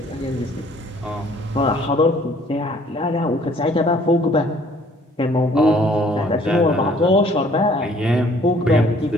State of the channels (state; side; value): normal; both; correlation 0.58